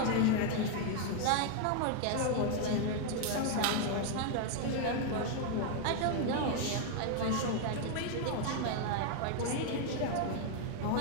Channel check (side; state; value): both; different; correlation 0.00